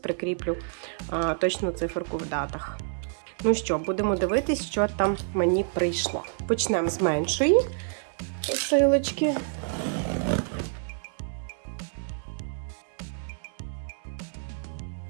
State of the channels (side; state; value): left; silent; digital silence